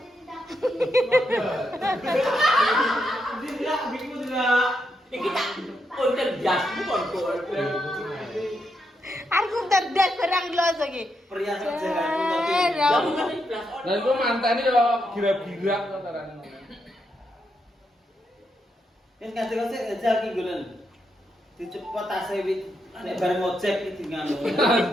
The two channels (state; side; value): normal; both; correlation 0.82